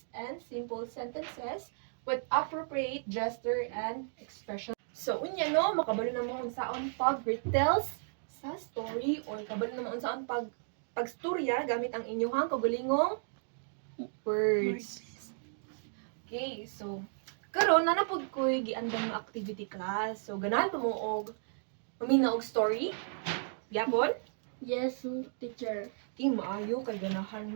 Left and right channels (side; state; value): left; silent; digital silence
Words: and simple sentences with appropriate gesture and expression. So, unya no, makabalo na mo kung saan pag-retells sa story or kabalo na mo kung saan pagstorya gamit ang inyong kagalingong words. Okay, so karon na napod ko'y giandang nga activity class. So, ganahan pa mo og mamina og story. Yapon? Yes, teacher. Okay, maayo kay ganahan